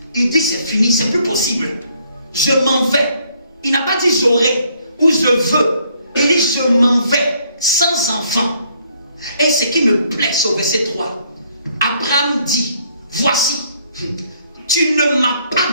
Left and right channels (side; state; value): both; inverted; correlation -0.67